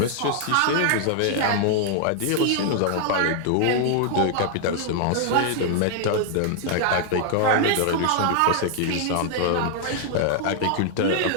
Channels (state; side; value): different; both; correlation 0.00